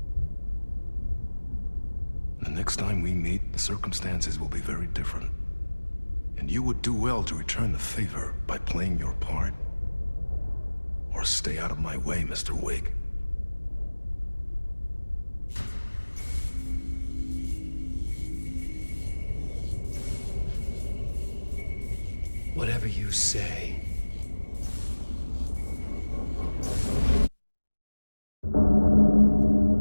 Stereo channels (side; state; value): both; inverted; correlation -1.00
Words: The next time we meet, the circumstances will be very different. And you would do well to return the favor by playing your part. Or stay out of my way, Mr. Wake. Whatever you say.